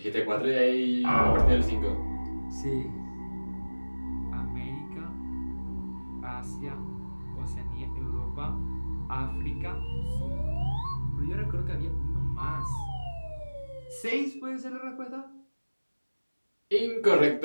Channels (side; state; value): both; inverted; correlation -1.00